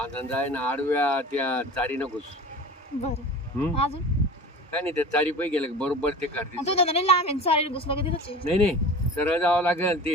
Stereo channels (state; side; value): normal; both; correlation 0.35